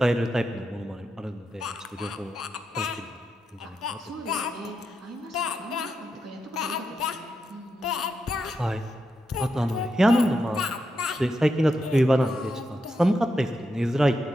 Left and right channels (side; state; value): both; normal; correlation 0.85